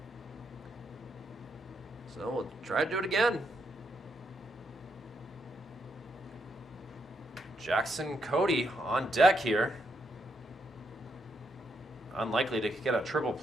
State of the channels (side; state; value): both; normal; correlation 0.78